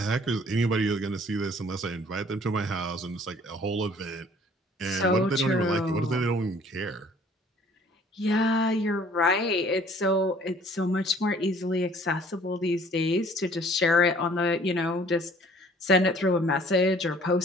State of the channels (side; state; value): both; normal; correlation 0.55